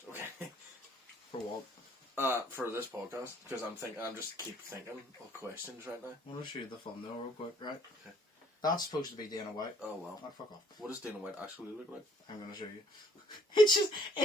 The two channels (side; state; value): both; normal; correlation 0.63